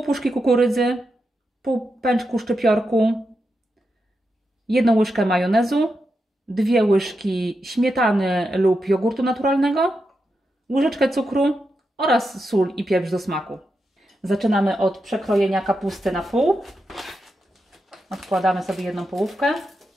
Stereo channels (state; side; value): normal; both; correlation 0.87